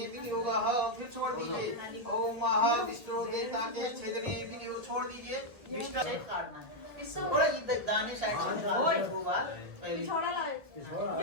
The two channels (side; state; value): left; late; 1.6 ms